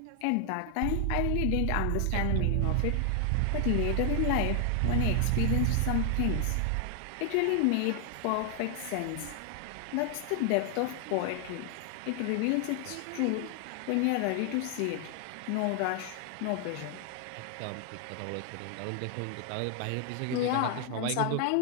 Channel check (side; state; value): both; different; correlation 0.00